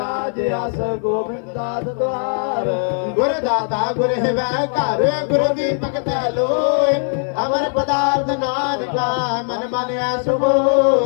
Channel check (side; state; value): right; silent; 57 dB below the other